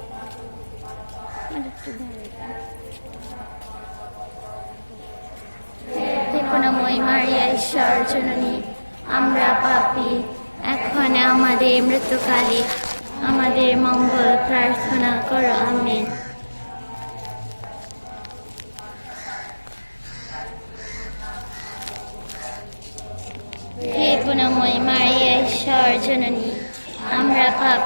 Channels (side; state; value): both; inverted; correlation -1.00